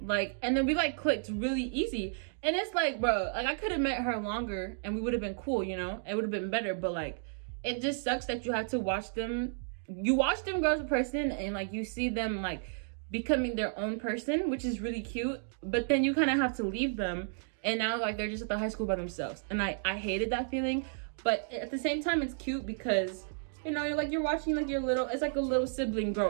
and then we like clicked really easy. And it's like, bro, like I could have met her longer and we would have been cool, you know, it would have been better. But like, it just sucks that you have to watch them. You watch them grow as a person, and like you see them like becoming their own person, which is really cute, but then you kind of have to leave them, and now like they're just at the high school by themselves. And I hated that feeling, but at the same time it's cute, because you know, you're watching like your little, it's like a little sibling grow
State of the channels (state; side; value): silent; left; digital silence